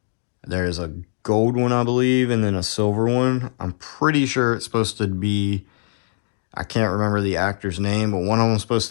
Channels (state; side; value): silent; right; digital silence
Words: There's a gold one, I believe, and then a silver one. I'm pretty sure it's supposed to be, I can't remember the actor's name, but one of them's supposed